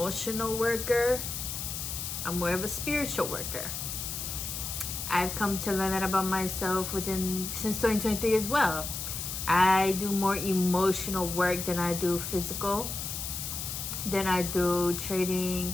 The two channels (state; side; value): noise; left; hiss, 5 dB below the sound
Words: worker. I'm more of a spiritual worker. I've come to learn that about myself since 2023 as well. I do more emotional work than I do physical. Then I do